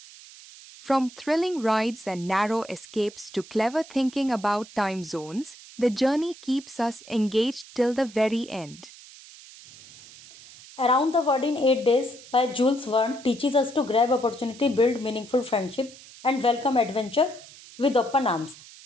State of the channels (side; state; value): right; noise; hiss, 19 dB below the sound